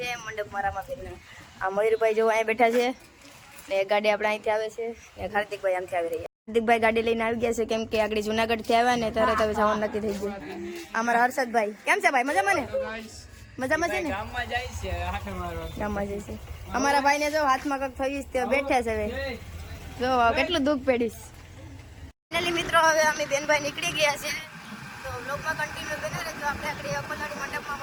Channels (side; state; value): both; identical; correlation 1.00